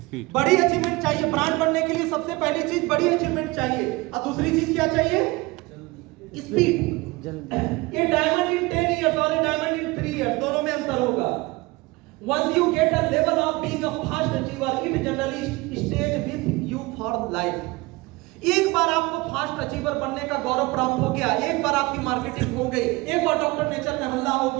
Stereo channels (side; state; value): left; quieter; 22.7 dB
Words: बड़ी अचीवमेंट चाहिए ब्रांड बनने के लिए। सबसे पहली चीज बड़ी अचीवमेंट चाहिए, और दूसरी चीज क्या चाहिए? स्पीड। ये डायमंड इन 10 इयर्स और ये डायमंड इन 3 इयर्स, दोनों में अंतर होगा। Once you get a level of being a fast achiever, it generally stays with you for life. एक बार आपको फास्ट अचीवर बनने का गौरव प्राप्त हो गया, एक बार आपकी मार्केटिंग हो गई, एक बार डॉक्टर नेचर में हल्ला हो